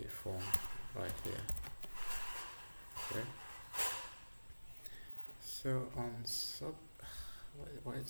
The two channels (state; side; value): inverted; both; correlation -1.00